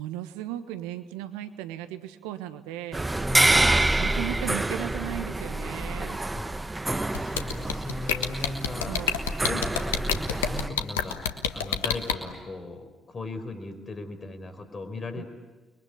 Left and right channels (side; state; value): both; normal; correlation 0.71